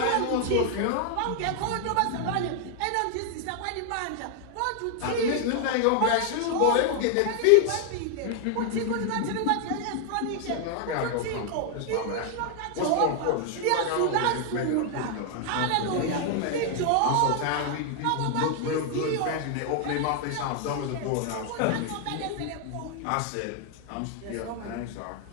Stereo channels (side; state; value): both; different; correlation 0.00